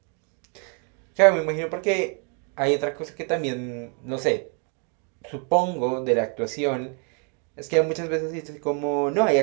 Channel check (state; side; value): quieter; left; 39.9 dB